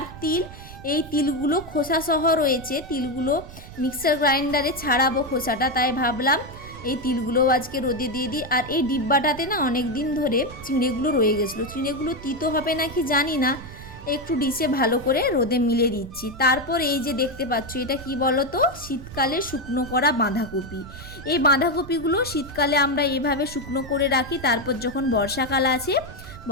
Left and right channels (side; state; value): right; noise; rumble, 15 dB below the sound